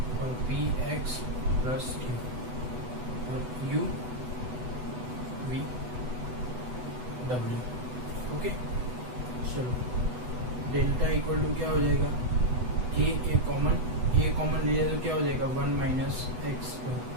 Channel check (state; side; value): late; left; 8.0 ms